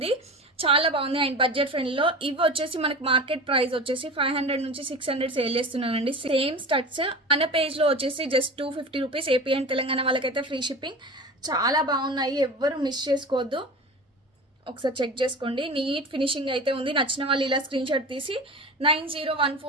చాలా బాగుంది అండ్ బడ్జెట్ ఫ్రెండ్లో. ఇవి వచ్చేసి మనకి మార్కెట్ ప్రైస్ వచ్చేసి 500 నుంచి 600 సేల్ చేస్తున్నానండి. సేమ్ స్టడ్స్ మన పేజ్లో వచ్చేసి just 250 rupees. AP and Telangana వాళ్ళకైతే ఫ్రీ షిప్పింగ్. చాలా బాగున్నాయి, ఎవ్వరు మిస్ చేసుకోవద్దు, ఒకసారి చెక్ చేసుకోండి. నీట్ ఫినిషింగ్ అయితే ఉంది. నచ్చిన వాళ్ళు ఇలా స్క్రీన్ షాట్ తీసి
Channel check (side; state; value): both; normal; correlation 0.32